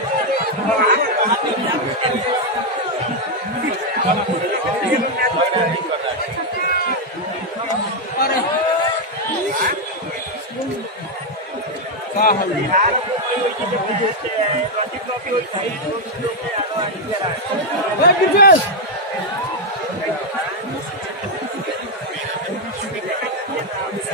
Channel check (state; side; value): normal; both; correlation 0.01